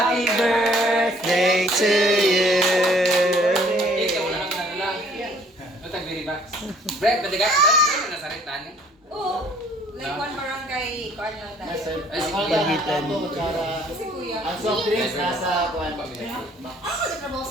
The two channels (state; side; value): normal; both; correlation 0.58